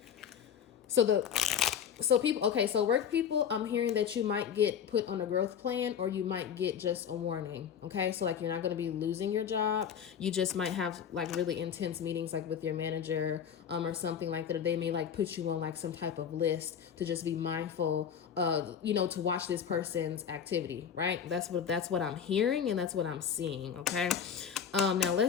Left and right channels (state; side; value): quieter; right; 8.0 dB